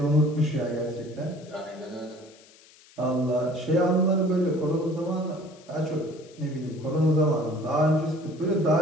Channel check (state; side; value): noise; left; hiss, 25 dB below the sound